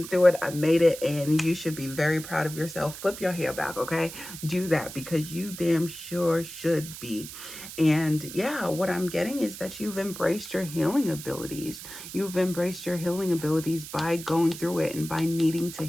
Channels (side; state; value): right; noise; hiss, 12 dB below the sound